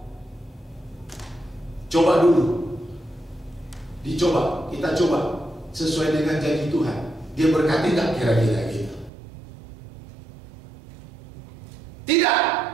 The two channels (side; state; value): left; drops out; at 9.1 s